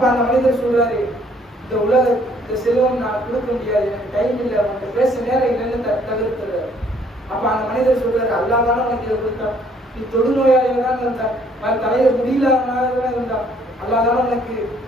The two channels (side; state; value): both; normal; correlation 0.63